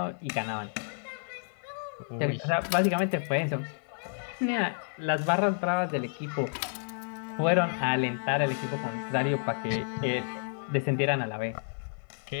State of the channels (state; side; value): silent; right; digital silence